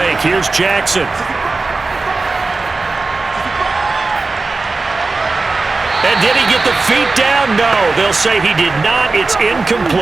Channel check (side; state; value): left; quieter; 3.7 dB